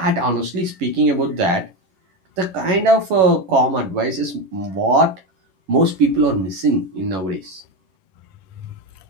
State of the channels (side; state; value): left; late; 11 ms